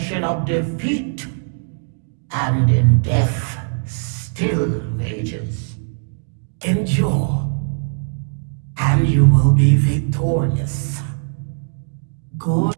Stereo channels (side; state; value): left; silent; digital silence